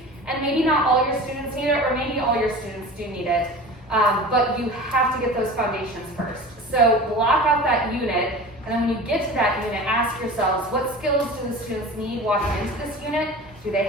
and maybe not all your students need it, or maybe all your students do need it, but you have to get those foundations first. So block out that unit, and then when you get to that unit, ask yourselves, what skills do the students need walking into this unit? Do they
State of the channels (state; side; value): normal; both; correlation 0.36